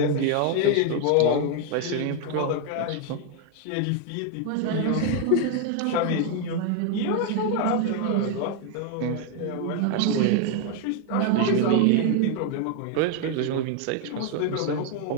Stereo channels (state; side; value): different; both; correlation 0.01